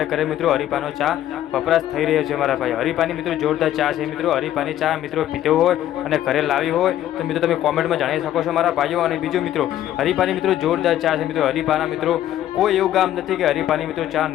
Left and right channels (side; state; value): right; quieter; 12.4 dB